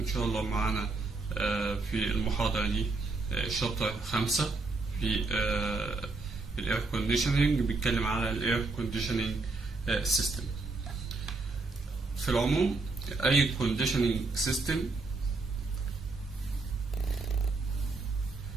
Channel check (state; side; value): quieter; left; 3.6 dB